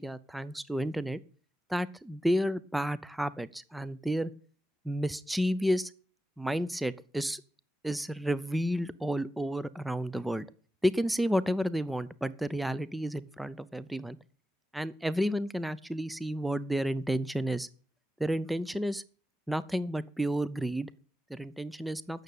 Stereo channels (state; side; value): normal; both; correlation 0.93